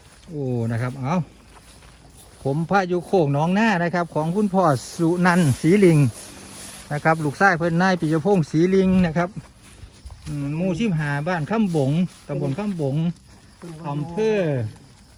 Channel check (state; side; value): identical; both; correlation 1.00